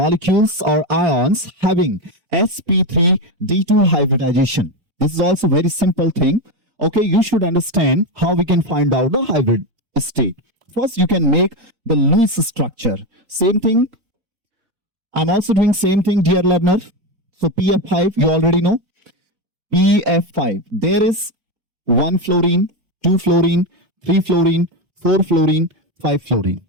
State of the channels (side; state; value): left; late; 3.9 ms